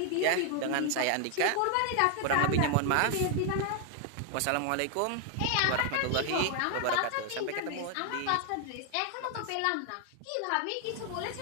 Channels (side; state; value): both; different; correlation 0.00